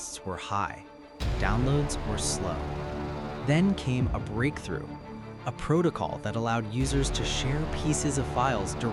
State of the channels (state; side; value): identical; both; correlation 1.00